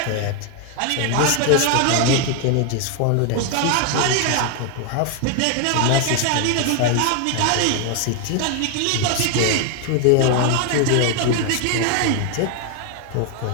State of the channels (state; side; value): different; both; correlation 0.00